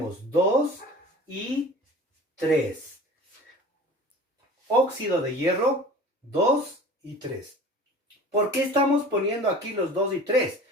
2 y 3. Óxido de hierro, 2 y 3. ¿Por qué estamos poniendo aquí los 2 y 3?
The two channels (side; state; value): both; normal; correlation 0.41